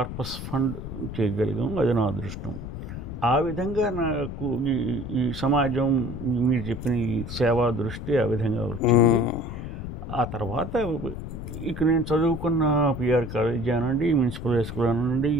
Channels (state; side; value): noise; left; rumble, 8 dB below the sound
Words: ఫండ్ చేయగలిగాం. అది నా అదృష్టం. ఆ విధంగా నాకు ఈ సమాజం మీరు చెప్పిన ఈ సేవా దృష్టి ఆ విధంగా వచ్చింది. ఆ తర్వాత ఇక నేను చదువుకున్న పిఆర్ కాలేజ్ అనండి, మున్సిపల్ హై స్కూల్ అనండి,